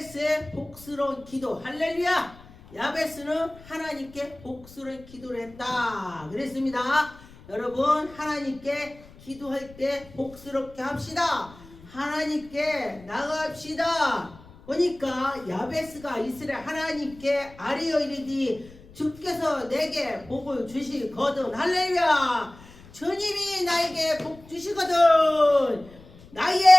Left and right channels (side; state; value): left; noise; rumble, 22 dB below the sound